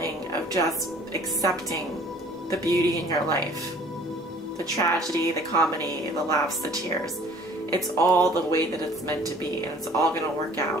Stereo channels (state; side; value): normal; both; correlation 0.52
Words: of just accepting the beauty in your life. The tragedy, the comedy, the laughs, the tears. It's all the way that it's meant to be, and it's all going to work